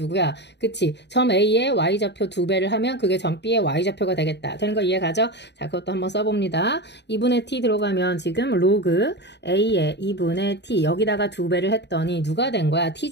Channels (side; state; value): right; late; 0.50 ms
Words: 그치? 점 A의 Y좌표 2배를 하면 그게 점 B의 Y좌표가 되겠다. 되는 거 이해가죠? 자, 그것도 한번 써봅니다. 2분의 T 들어가면 지금 로그 A의 2분의 T 여기다가 2배를 했더니 누가 된 거야? T